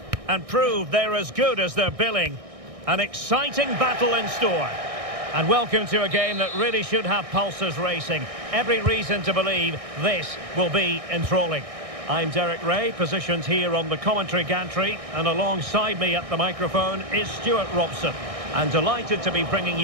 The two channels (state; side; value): late; left; 1.6 ms